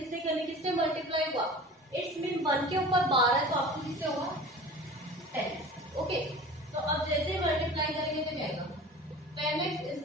करनी, किससे मल्टीप्लाई हुआ इट्स मीन 1 के ऊपर बार है तो आपको किससे होगा 10, ओके। तो अब जैसे मल्टीप्लाई करेंगे तो क्या आएगा 10x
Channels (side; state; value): both; normal; correlation 0.39